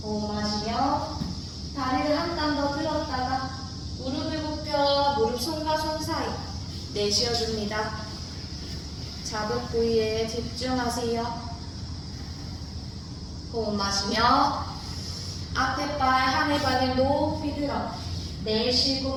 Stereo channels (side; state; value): both; identical; correlation 1.00